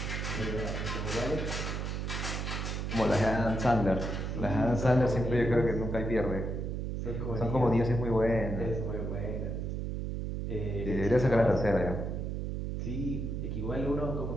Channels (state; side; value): noise; right; hum, 3 dB below the sound